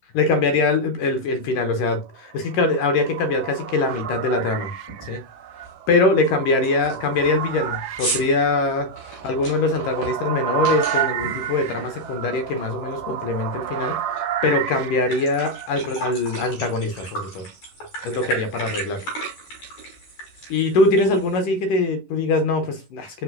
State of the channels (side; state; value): right; late; 11 ms